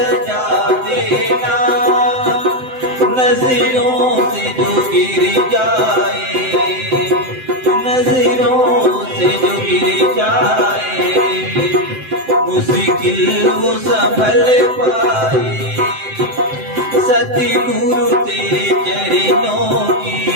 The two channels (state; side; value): late; left; 7.8 ms